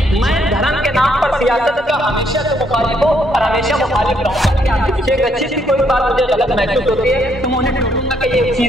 मैं धर्म के नाम पर सियासत का हमेशा से मुखालिफ हूँ और हमेशा मुखालिफ रहूंगा। एक अच्छी सी कोई बात मुझे गलत महसूस होती है तो मैं उन्हें टोकूंगा कि ये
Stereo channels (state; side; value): normal; both; correlation 0.71